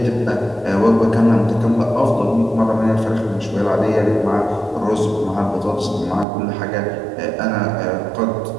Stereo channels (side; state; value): left; drops out; at 6.2 s